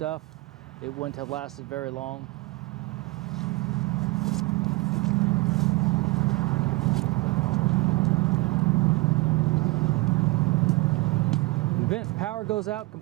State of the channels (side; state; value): left; quieter; 23.4 dB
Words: It wouldn't have lasted very long. The vent power goes out